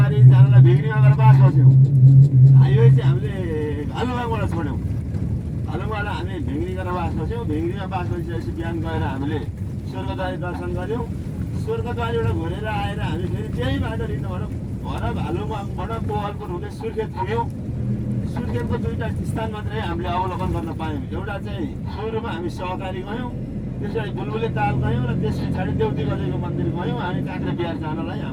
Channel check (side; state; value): both; identical; correlation 1.00